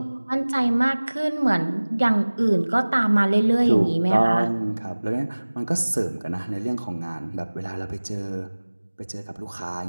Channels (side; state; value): both; inverted; correlation -1.00